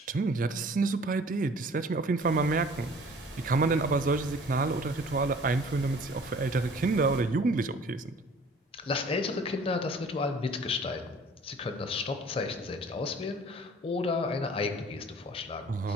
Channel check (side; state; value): both; normal; correlation 0.50